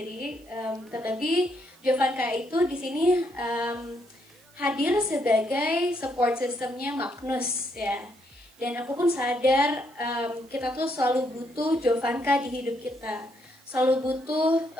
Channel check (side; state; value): right; noise; hiss, 29 dB below the sound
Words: Terlebih Jovanka itu di sini hadir sebagai support systemnya Magnus ya. Dan aku pun sadar kita tuh selalu butuh Jovanka di hidup kita. Selalu butuh